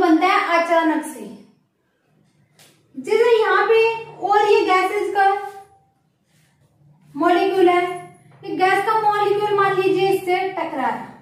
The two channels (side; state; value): both; identical; correlation 1.00